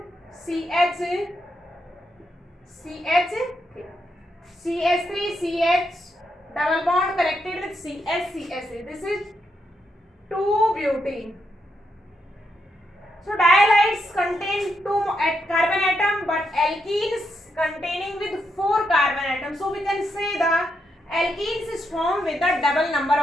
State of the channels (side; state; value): both; normal; correlation 0.81